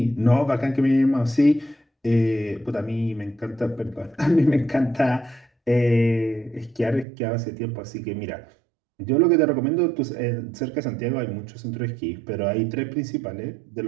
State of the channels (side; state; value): left; drops out; at 7.1 s